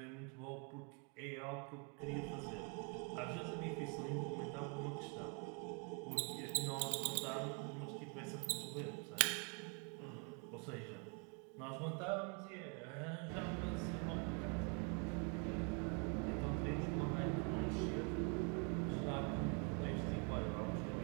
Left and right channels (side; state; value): left; quieter; 36.1 dB